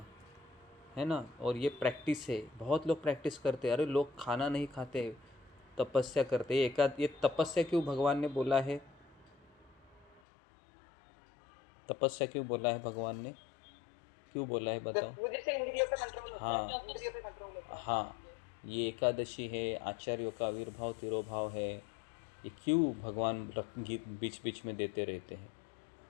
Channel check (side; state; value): right; drops out; at 10.2 s